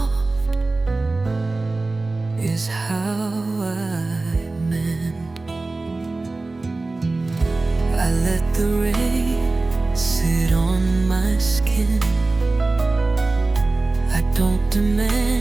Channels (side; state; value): left; quieter; 3.3 dB